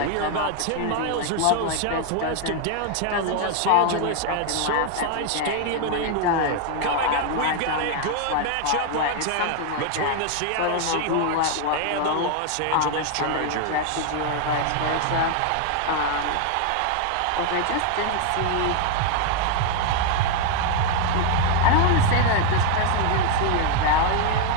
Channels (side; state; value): both; different; correlation 0.00